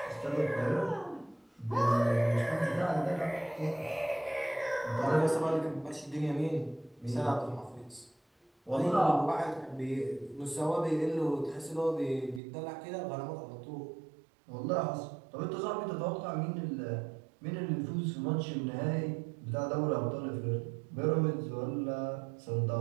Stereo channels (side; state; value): left; drops out; at 12.4 s